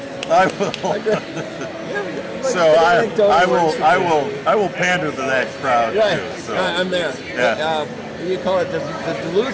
I will pander to that crowd too. So. I'm there. Yeah. You call it the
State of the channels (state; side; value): identical; both; correlation 1.00